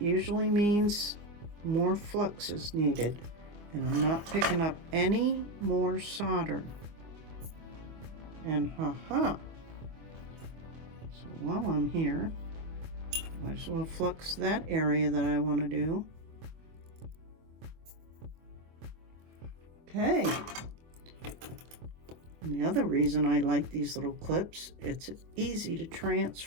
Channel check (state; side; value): late; left; 24 ms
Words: means more flux is needed. And I'm not picking up any more solder. And haha. So while I'm here, might as well flux that area that I want to do. Okay. And the other reason I like these little clips, it's easy to